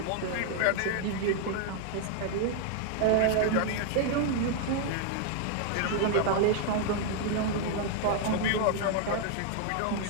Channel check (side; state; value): both; different; correlation 0.00